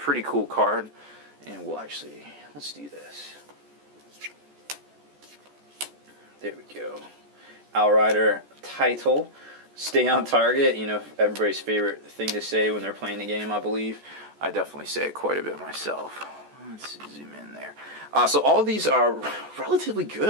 cool card, and let's do this. There we go. Outrider title. Stay on target, you know, everybody's favorite thing to say when they're playing the game, I believe. I definitely say it quite a bit myself. Let's zoom in there. So all of these are relatively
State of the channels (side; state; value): left; late; 14 ms